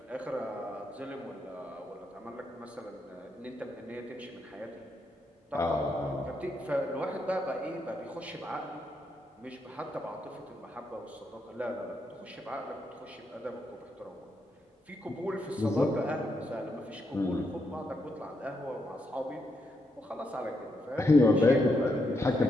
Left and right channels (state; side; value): normal; both; correlation 0.81